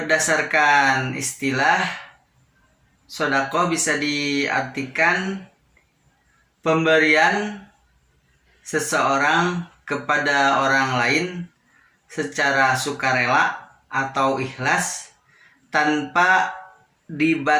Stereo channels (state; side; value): identical; both; correlation 1.00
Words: istilah, sodakoh bisa diartikan pemberian seseorang kepada orang lain secara sukarela atau ikhlas tanpa